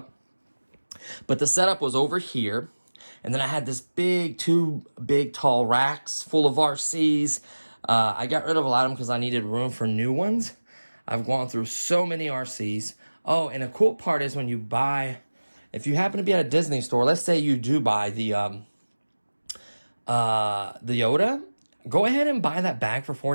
But the setup was over here. And then I had this two big tall racks full of RCs. I got rid of a lot of them because I needed room for new ones. I've gone through so many RCs. Oh, and a cool part is when you buy, if you happen to be at a Disney store, let's say you do buy the Yoda, go ahead and buy that bag for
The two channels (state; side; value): inverted; both; correlation -1.00